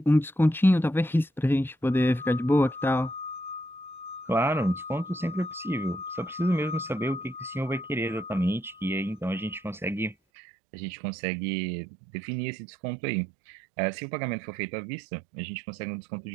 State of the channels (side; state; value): left; drops out; at 10.2 s